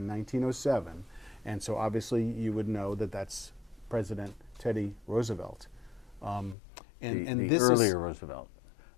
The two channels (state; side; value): drops out; right; at 6.6 s